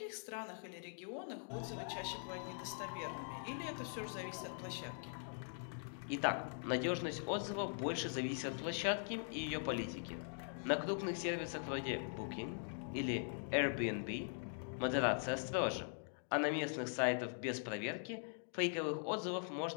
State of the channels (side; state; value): right; silent; digital silence